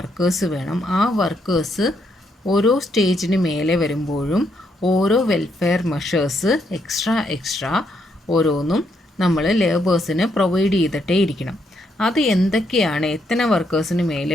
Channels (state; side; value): normal; both; correlation 0.76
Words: വേണം. ആ വർക്കേഴ്സ് ഓരോ സ്റ്റേജിന് മേലെ വരുമ്പോഴും ഓരോ വെൽഫെയർ മെഷേഴ്സ് എക്സ്ട്രാ ഓരോന്നും നമ്മൾ ലേബേഴ്സിന് പ്രൊവൈഡ് ചെയ്തിട്ടേ ഇരിക്കണം. അത് എന്തൊക്കെയാണ്, എത്ര വർക്കേഴ്സിന് മേലെ